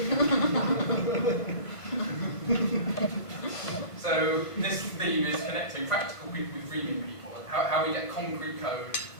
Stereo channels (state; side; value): late; right; 1.5 ms